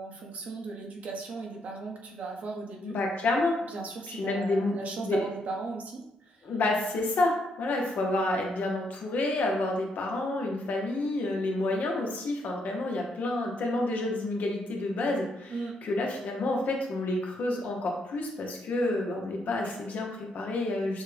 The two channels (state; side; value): normal; both; correlation 0.75